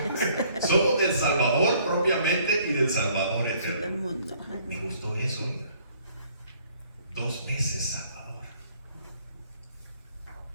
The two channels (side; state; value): both; inverted; correlation -0.61